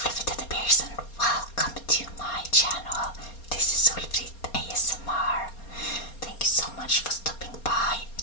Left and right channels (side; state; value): right; late; 4.3 ms